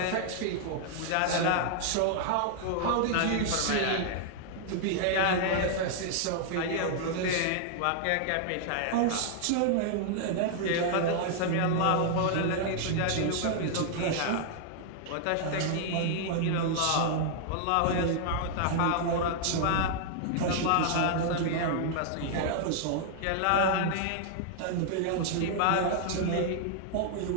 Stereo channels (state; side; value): different; both; correlation -0.01